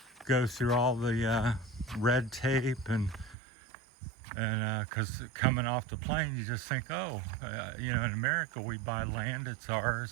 go through all the red tape and because coming off the plane you just think, in America we buy land, it's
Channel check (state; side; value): drops out; left; at 3.4 s